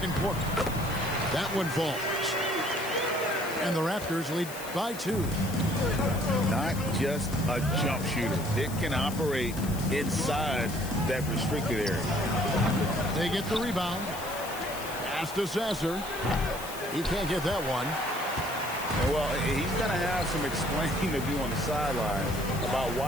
quarter. That one falls. And the Raptors lead by 2. Not just a jump shooter. Dick can operate inside that restricted area. They get the rebound. Pass to Sasser. He can't get that one. Well, he's going to have some explaining to do on the sideline about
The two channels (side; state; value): left; noise; hiss, 12 dB below the sound